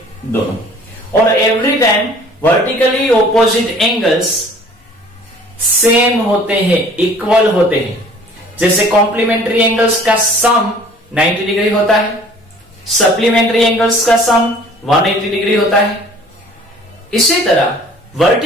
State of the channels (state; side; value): normal; both; correlation 0.51